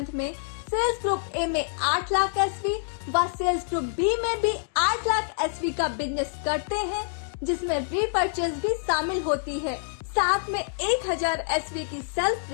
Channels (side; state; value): right; silent; digital silence